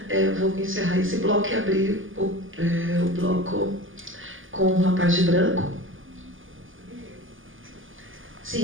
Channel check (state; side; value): late; left; 0.58 ms